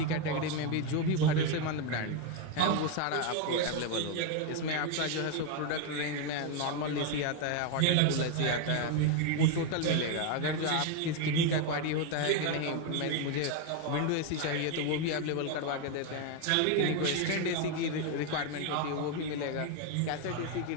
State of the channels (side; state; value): both; different; correlation 0.01